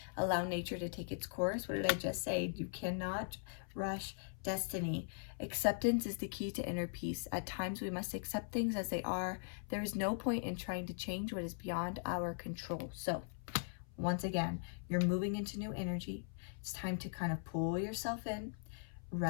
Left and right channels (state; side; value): silent; right; 51 dB below the other